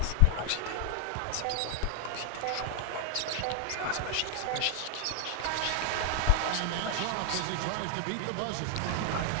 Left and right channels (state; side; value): different; both; correlation 0.00